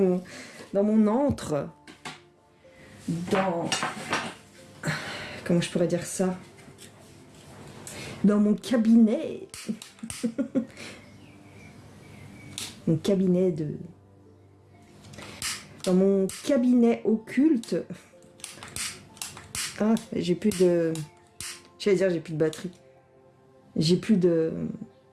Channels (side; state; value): both; identical; correlation 1.00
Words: mon antre, comment je pourrais dire ça? Dans mon cabinet. Dans mon cabinet occulte. Ah, j'ai plus de... J'allais dire, j'ai plus de batterie. J'ai plus de